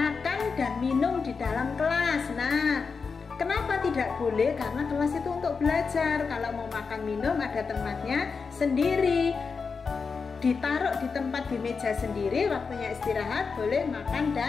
dan minum di dalam kelas. Nah, kenapa tidak boleh? Karena kelas itu untuk belajar. Kalau mau makan minum ada tempatnya sendiri, ditaruh di tempat di meja sendiri. Waktunya istirahat boleh makan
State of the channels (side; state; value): right; quieter; 5.1 dB